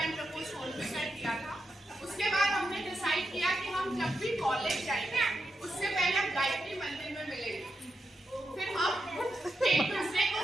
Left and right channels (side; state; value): both; normal; correlation 0.86